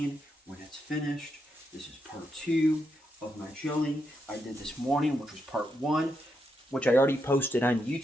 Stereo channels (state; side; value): normal; both; correlation 0.82